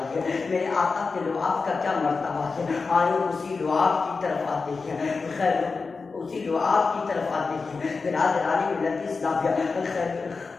میرے آقا کے لعاب کا کیا مرتبہ ہے۔ آئے اسی لعاب کی طرف آتے ہیں، خیر اسی لعاب کی طرف آتے ہیں۔ برادران ملت اسلامیہ،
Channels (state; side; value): quieter; right; 4.4 dB